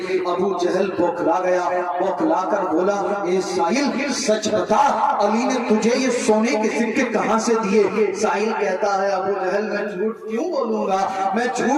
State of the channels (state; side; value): identical; both; correlation 1.00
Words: ابو جہل بوکھلا گیا، بوکھلا کر بولا اے سائل سچ بتا علی نے تجھے یہ سونے کے سکے کہاں سے دیے؟ سائل کہتا ہے ابو جہل میں جھوٹ کیوں بولوں گا، میں